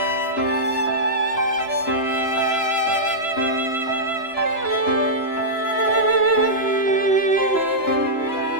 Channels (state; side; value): late; right; 2.9 ms